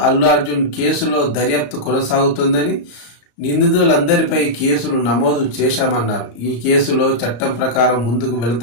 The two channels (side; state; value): right; late; 34 ms